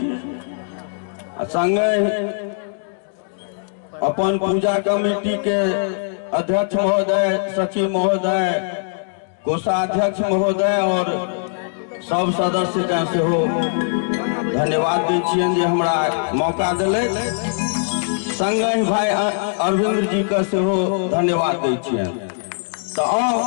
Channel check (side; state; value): right; silent; digital silence